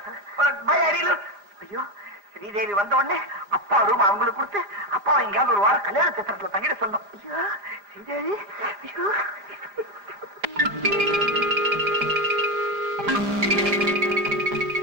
ஐயோ, ஸ்ரீதேவி வந்த உடனே அப்பா ரூம் அவங்களுக்கு கொடுத்து அப்பா எங்கேயாவது ஒரு வாரம் கல்யாண சித்திரத்துல தங்கிட சொன்னோம். ஐயோ ஸ்ரீதேவி, ஐயோ.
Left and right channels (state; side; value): late; left; 4.9 ms